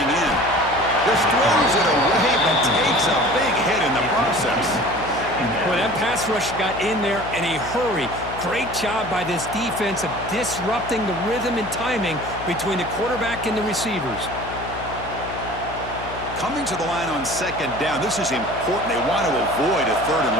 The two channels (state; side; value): noise; left; hum, 12 dB below the sound